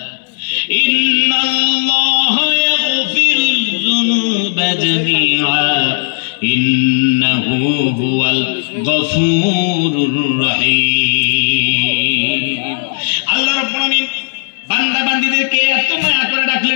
ইন্নাল্লাহা ইয়াগফিরুয যুনুবা জামিআ ইন্নাহু হুয়াল গফুরুর রহিম। আল্লাহ রাব্বুল আমিন বান্দা বান্দীদেরকে এত মায়া করে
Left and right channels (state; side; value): silent; right; 71 dB below the other